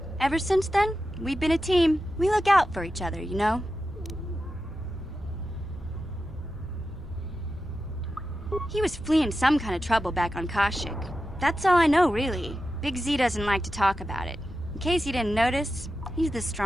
Ever since then, we've been a team. We look out for each other, you know? He was fleeing some kind of trouble back on Kashyyyk. That's all I know, really. Big Z doesn't like to talk about it. In case you didn't notice, he's the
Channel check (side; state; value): both; normal; correlation 0.91